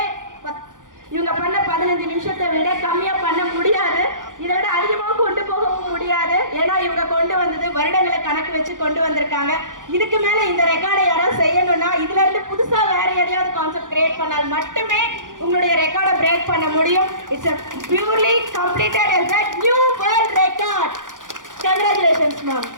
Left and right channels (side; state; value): left; late; 0.88 ms